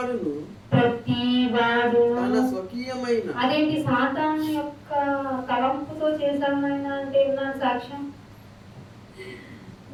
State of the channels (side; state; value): both; identical; correlation 1.00